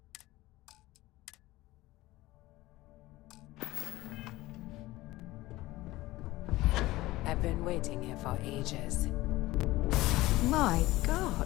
I've been waiting here for ages. My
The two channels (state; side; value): quieter; right; 18.2 dB